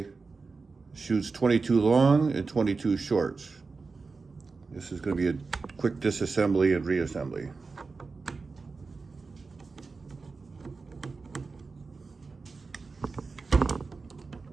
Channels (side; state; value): left; quieter; 4.3 dB